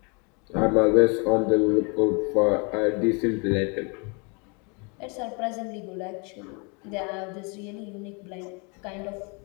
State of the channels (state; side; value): quieter; right; 33.0 dB